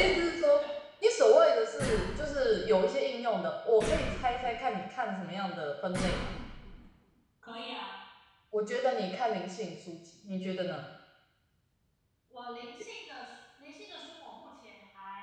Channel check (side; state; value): both; identical; correlation 1.00